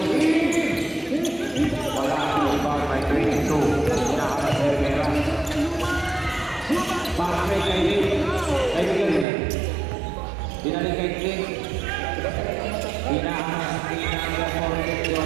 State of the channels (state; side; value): drops out; left; at 9.2 s